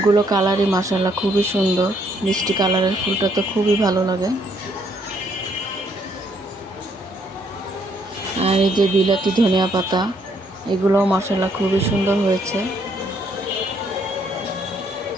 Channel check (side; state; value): both; normal; correlation 0.70